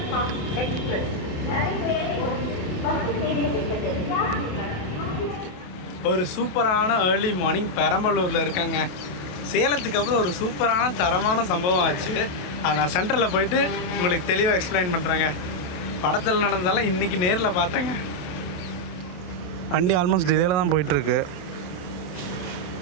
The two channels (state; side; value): late; right; 28 ms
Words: ஃபாஸ்ட் எக்ஸ்பிரஸ் ஒரு சூப்பரான ஏர்லி மார்னிங் பெரம்பலூரில் இருக்காங்க. சேலத்துக்கு அப்புறம் ஒரு சூப்பரான தரமான சம்பவம் ஆச்சு. அதை நான் சென்டரில் போயிட்டு உங்களுக்கு தெளிவாக எக்ஸ்பிளைன் பண்ணுறேங்க. படத்தில் நடந்ததெல்லாம் இன்றைக்கி நேரில் பார்த்தேங்க. வண்டி ஆல்மோஸ்ட் டிலேயில் தான் போயிட்டுருக்கு.